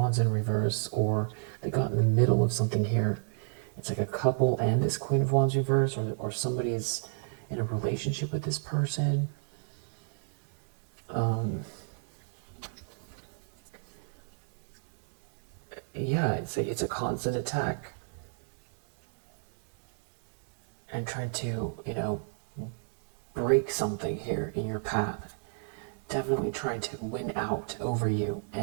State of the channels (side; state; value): left; silent; digital silence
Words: in reverse, or they got in the middle of something here. It's like a couple and this Queen of Wands reverse, or somebody is in a relationship with this person. Yeah, it's a constant attack. And trying to, break something here in your path. Definitely trying to win out over you,